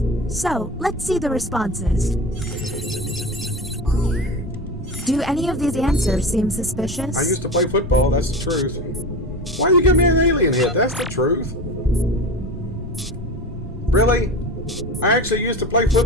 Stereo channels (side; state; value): both; normal; correlation 0.28